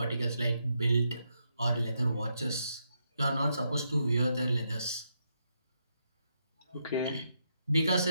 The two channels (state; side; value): inverted; both; correlation -0.80